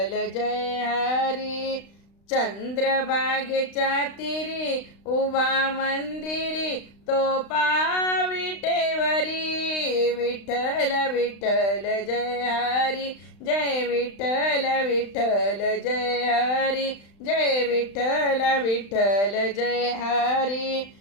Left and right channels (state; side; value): late; right; 35 ms